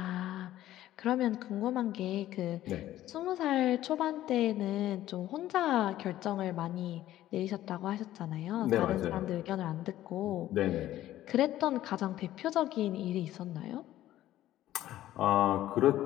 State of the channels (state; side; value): quieter; right; 13.8 dB